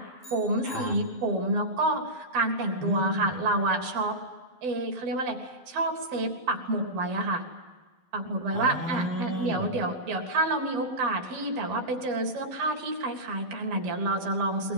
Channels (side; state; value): left; late; 12 ms